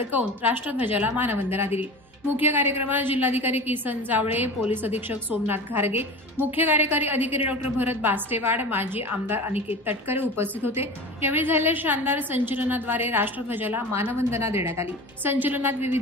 राष्ट्रध्वजाला मानवंदना दिली. मुख्य कार्यक्रमात जिल्हाधिकारी किसन जावळे, पोलीस अधीक्षक सोमनाथ घारगे, मुख्य कार्यकारी अधिकारी डॉक्टर भरत बास्टेवाड, माजी आमदार अनिकेत तटकरे उपस्थित होते. यावेळी झालेल्या शानदार संचलनाद्वारे राष्ट्रध्वजाला मानवंदना देण्यात आली. संचलनात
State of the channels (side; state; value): both; normal; correlation 0.33